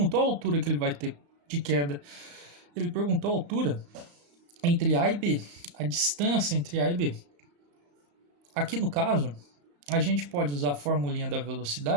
a altura que ele vai ter de queda. Ele perguntou a altura entre A e B, a distância entre A e B. Aqui no caso, a gente pode usar a formulinha da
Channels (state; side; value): late; left; 35 ms